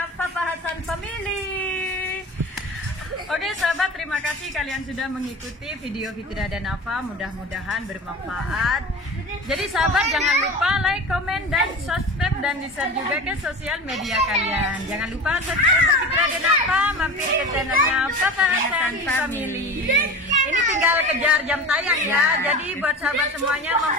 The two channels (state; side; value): normal; both; correlation 0.32